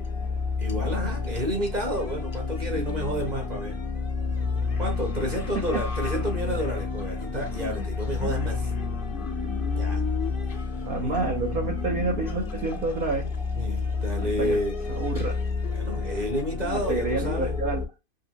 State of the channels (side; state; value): left; late; 2.5 ms